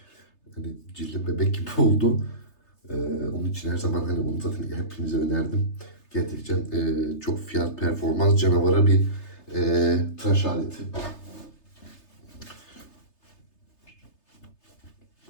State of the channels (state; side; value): late; right; 3.3 ms